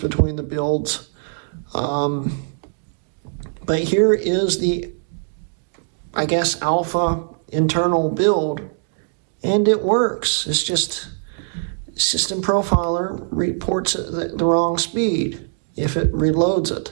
the builds. But here is the, I guess, alpha internal build, and it works. It's just System Profiler reports the wrong speed if it reloads it.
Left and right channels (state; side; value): silent; left; digital silence